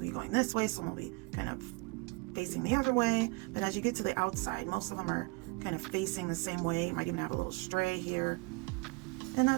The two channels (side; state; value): left; quieter; 27.7 dB